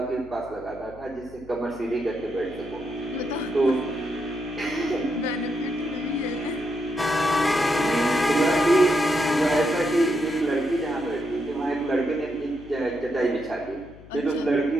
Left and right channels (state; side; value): noise; left; hum, 20 dB below the sound